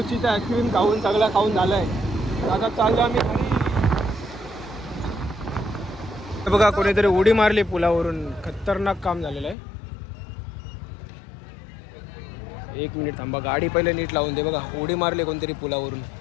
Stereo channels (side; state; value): right; drops out; at 9.6 s